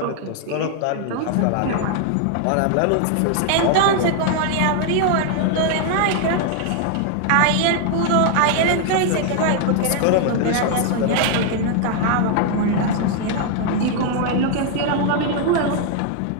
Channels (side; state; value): both; different; correlation 0.00